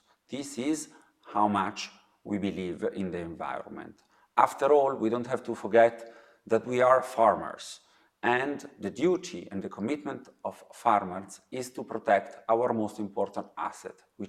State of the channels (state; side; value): identical; both; correlation 1.00